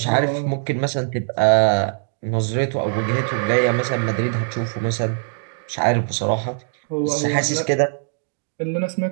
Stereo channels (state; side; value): silent; left; digital silence